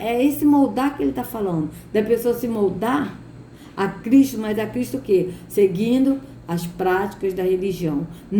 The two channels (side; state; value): both; identical; correlation 1.00